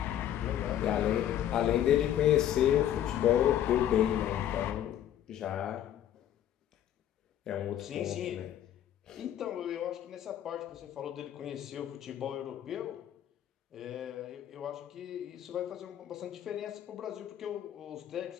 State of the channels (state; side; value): quieter; right; 11.1 dB